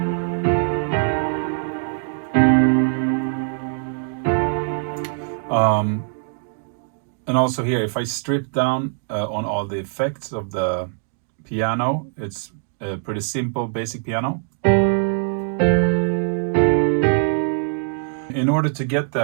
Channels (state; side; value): silent; left; digital silence